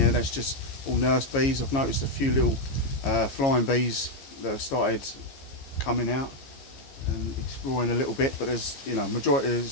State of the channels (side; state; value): right; late; 15 ms